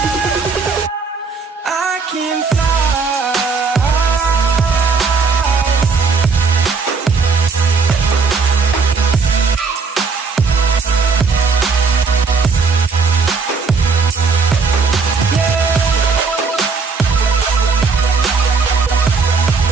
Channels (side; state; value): left; quieter; 4.7 dB